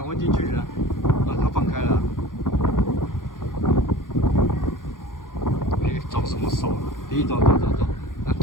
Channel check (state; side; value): late; right; 0.90 ms